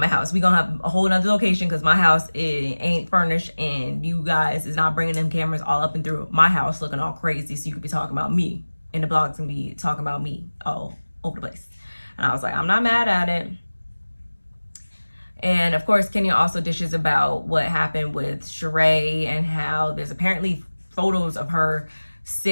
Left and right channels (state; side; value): inverted; both; correlation -1.00